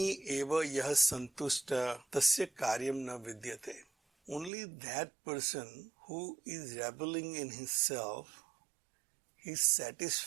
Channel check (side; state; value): left; drops out; at 4.5 s